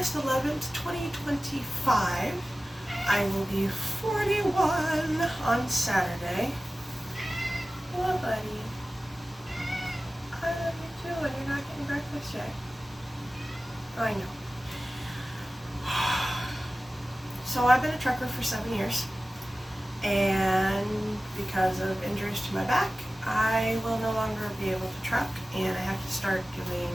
11th, 2025. I will be 41 on Saturday. Hello, buddy. I love you too, and you're not getting breakfast yet. I know. So I've been a trucker for 7 years, and because of injuries to my back, I will no longer be able to truck, and I have to start doing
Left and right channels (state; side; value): normal; both; correlation 0.96